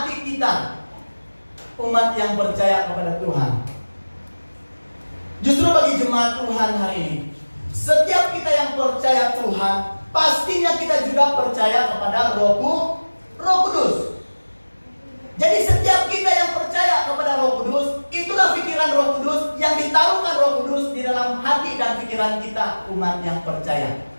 kita, umat yang percaya kepada Tuhan. Justru bagi jemaat Tuhan hari ini, setiap kita yang percaya Tuhan, pastinya kita juga percaya kepada Roh Kudus. Jadi setiap kita yang percaya kepada Roh Kudus, itulah pikiran Roh Kudus yang ditaruhkan Roh Kudus di dalam hati dan pikiran kita, umat yang percaya.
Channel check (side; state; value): both; inverted; correlation -1.00